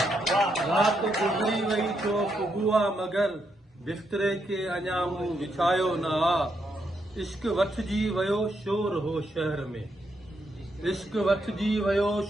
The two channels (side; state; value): both; normal; correlation 0.80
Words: रात गुज़री वई थियो सुबुह आहे मगर बिस्तरे खे अञा मूं विछायो ना इश्क वठजी वियो शोर हो शहर में इश्क वठजी वियो